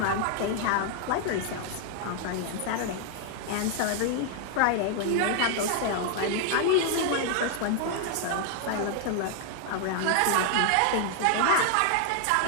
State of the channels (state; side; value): different; both; correlation 0.00